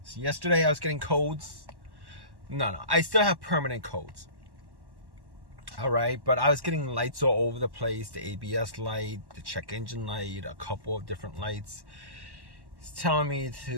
I was getting codes. No, I still have permanent codes. All right, but I was getting lights all over the place. The ABS light, the check engine light, a couple of different lights. It's telling me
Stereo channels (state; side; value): late; left; 1.1 ms